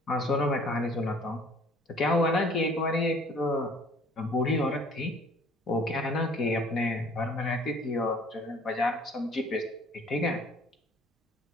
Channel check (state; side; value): normal; both; correlation 0.54